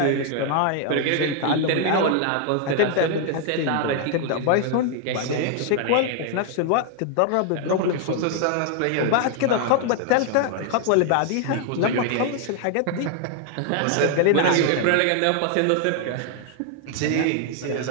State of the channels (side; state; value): both; different; correlation 0.00